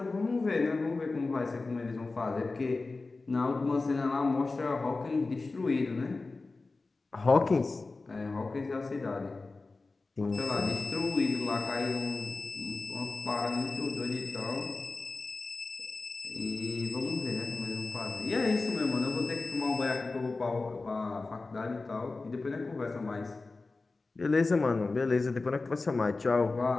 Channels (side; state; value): right; quieter; 3.6 dB